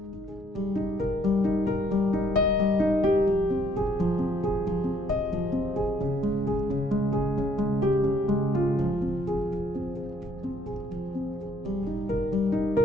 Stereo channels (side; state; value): both; normal; correlation 0.65